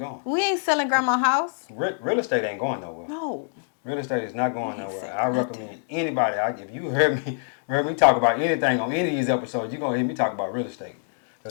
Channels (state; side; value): silent; right; digital silence